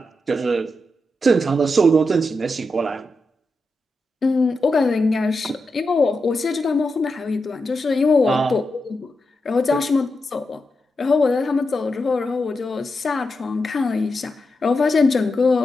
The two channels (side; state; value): both; normal; correlation 0.87